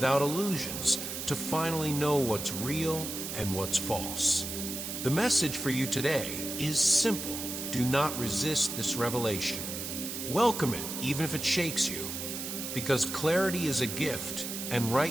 illusions, to finally know what's real and what's false. The message for you today is simple. Do not resist this revelation. Welcome it, even if it shakes you, because clarity is a gift, and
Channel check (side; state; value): right; noise; hiss, 6 dB below the sound